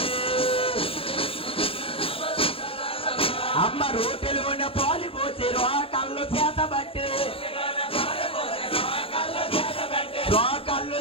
అమ్మ రోటిలోన పాలు పోసి రోకళ్ళు చేతబట్టి రోకళ్ళు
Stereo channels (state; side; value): late; right; 0.27 ms